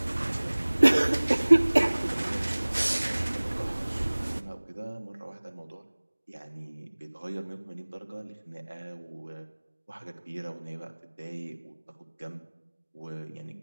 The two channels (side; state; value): both; inverted; correlation -1.00